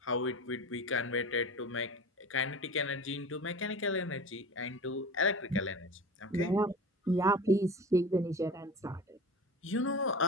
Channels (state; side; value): normal; both; correlation 0.33